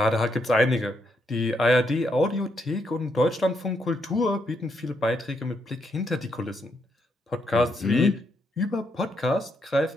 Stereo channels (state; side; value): normal; both; correlation 0.78